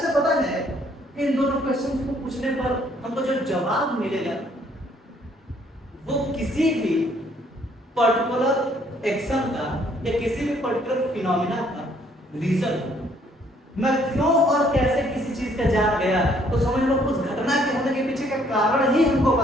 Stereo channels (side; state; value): both; normal; correlation 0.64